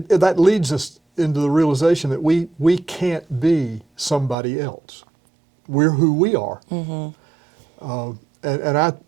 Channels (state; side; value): drops out; left; at 4.4 s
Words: that leads us into the realization that we can't be somebody else. We're who we are. Mm-hmm.